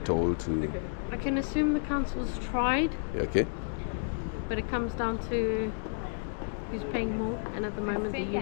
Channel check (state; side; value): silent; right; digital silence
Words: told to. I can assume the council's tried, Okay. but it comes down to who's paying more, and at the moment the